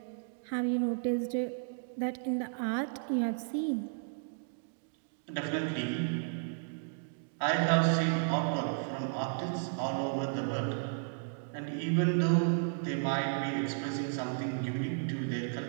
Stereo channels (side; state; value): left; silent; digital silence